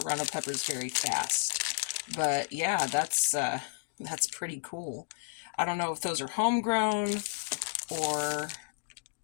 peppers very fast. But yeah, that's pretty cool. I don't know if those are homegrown or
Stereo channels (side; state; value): right; silent; digital silence